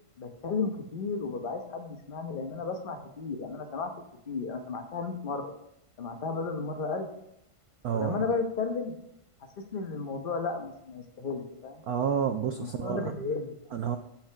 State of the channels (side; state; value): left; late; 1.5 ms